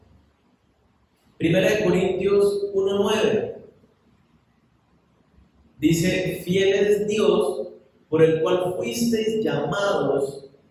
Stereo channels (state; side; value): identical; both; correlation 1.00